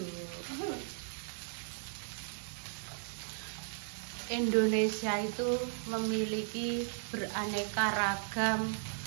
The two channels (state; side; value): silent; left; 54 dB below the other